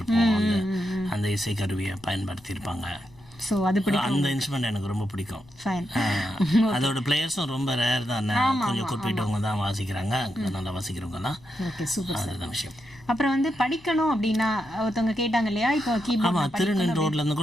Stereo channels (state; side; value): noise; left; rumble, 26 dB below the sound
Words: அந்த இசை கருவியை பயன்படுத்தியிருப்பாங்க. அந்த இன்ஸ்ட்ருமெண்ட் எனக்கு ரொம்ப பிடிக்கும். அதோட பிளேயர்ஸும் ரொம்ப ரேர் தான், கொஞ்சம் குறிப்பிட்டவங்க தான் வாசிக்கிறாங்க, நல்லா வாசிக்கிறவங்க தான். அதுதான் விஷயம். அப்புறம் வந்து படிக்கணும் அப்படின்னா ஒருத்தவங்க கேட்டாங்க இல்லையா, இப்போ ஆமாம், திருநெல் ரோட்ல இருந்து